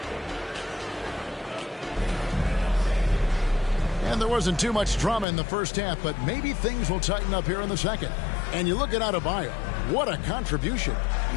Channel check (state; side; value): drops out; right; at 5.2 s